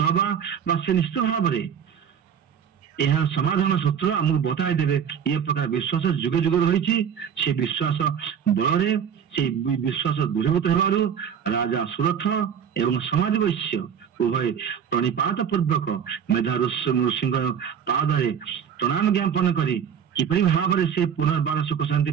ହବା ବା ସେ ନିଶ୍ଚିତ ଭାବରେ ଏହାର ସମାଧାନ ସୂତ୍ର ଆମକୁ ବତାଇ ଦେବେ। ଏ ପ୍ରକାର ବିଶ୍ୱାସ ଯୁଗ ଯୁଗ ରହିଛି। ସେ ବିଶ୍ୱାସ ବଳରେ ସେ ବିଶ୍ୱାସ ଦୃଢ଼ଭୂତ ହେବାରୁ ରାଜା ସୁରଥ ଏବଂ ସମାଜ ବୈଶ୍ୟ ଉଭୟ ପ୍ରଣିପାତ ପୂର୍ବକ ମେଧା ଋଷିଙ୍କ ପାଦରେ ପ୍ରଣାମ ଜ୍ଞାପନ କରି କିପରି ଭାବରେ ସେ ପୁନର୍ବାର ସୁଖ ଶାନ୍ତି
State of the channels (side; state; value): left; quieter; 8.1 dB